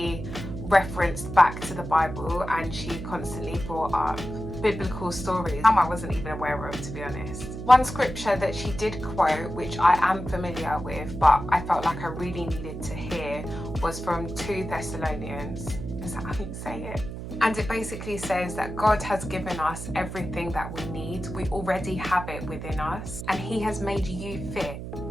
referenced back to the Bible, and she constantly brought up biblical stories some I wasn't even aware of, to be honest. One scripture that she did quote, which I am familiar with but I felt like I really needed to hear, was from 2 Thessalonians. Is that how you say it? And it basically says that God has given us everything that we need. We already have it within us, and he has made you fit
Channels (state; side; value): noise; right; hum, 8 dB below the sound